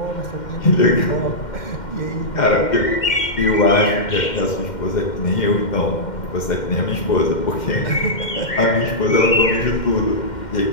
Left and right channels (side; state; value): right; late; 2.1 ms